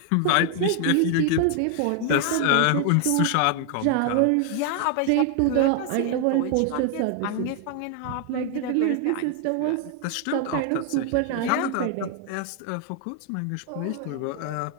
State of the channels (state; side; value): different; both; correlation 0.00